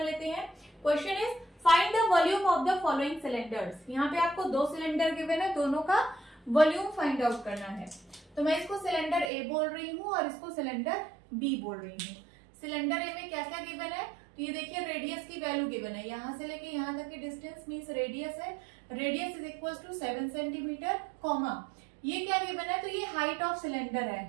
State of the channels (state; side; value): drops out; left; at 9.3 s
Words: लेते हैं। Question is find the volume of the following cylinders. यहाँ पे आपको 2 सिलेंडर गिवन है, दोनों का वॉल्यूम फाइंड आउट करना है। तो मैं इसको सिलेंडर ए बोल रही हूँ और इसको सिलेंडर बी बोल रही हूँ। सिलेंडर ए में क्या क्या गिवन है? तो ये देखिए रेडियस की वैल्यू गिवन है, यहाँ से लेके यहाँ तक की डिस्टेंस मीन्स रेडियस है। Radius is equal to 7 centimetre, comma ये क्या गिवन है? तो ये हाइट ऑफ सिलेंडर